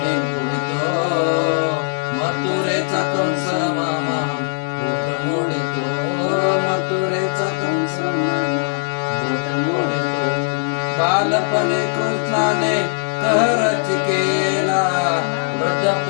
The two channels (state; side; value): silent; right; digital silence